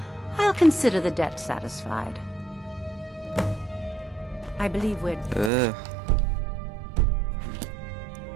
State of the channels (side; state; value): left; drops out; at 5.5 s